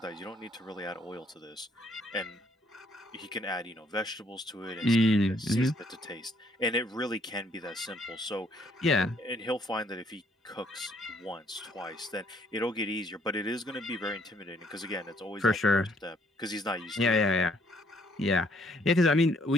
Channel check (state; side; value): normal; both; correlation 0.66